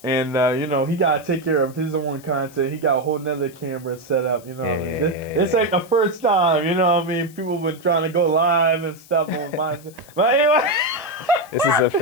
And, you know, he got to take care of his own content. He got a whole nother camera set up, you know what I mean? This ain't the first time, you know what I mean? People been trying to go live and stuff on my... But anyway... This is a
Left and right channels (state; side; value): noise; left; hiss, 23 dB below the sound